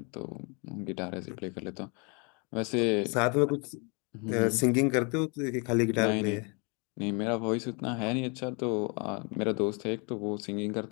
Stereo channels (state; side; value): quieter; right; 32.9 dB